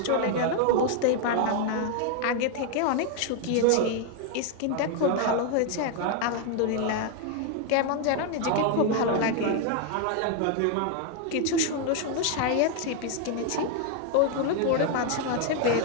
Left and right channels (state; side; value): different; both; correlation 0.01